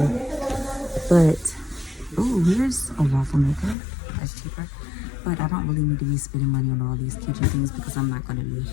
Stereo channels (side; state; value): right; drops out; at 3.8 s